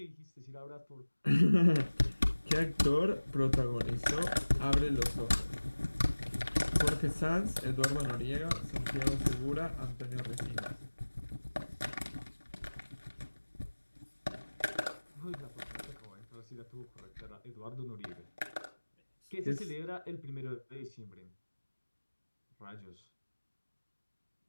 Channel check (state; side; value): inverted; both; correlation -1.00